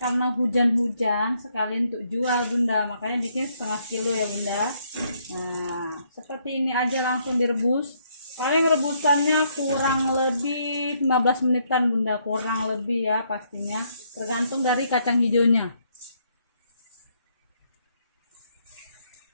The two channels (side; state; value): both; inverted; correlation -0.72